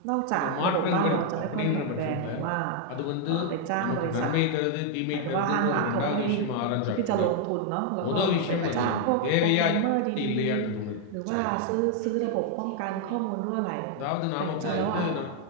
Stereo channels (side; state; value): both; different; correlation 0.00